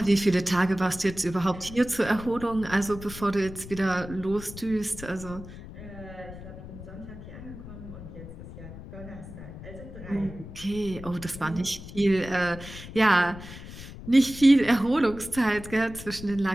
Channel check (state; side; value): noise; left; rumble, 13 dB below the sound